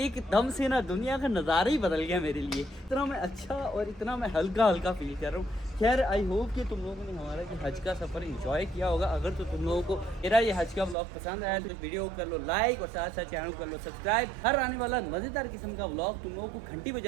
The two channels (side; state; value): left; drops out; at 11.0 s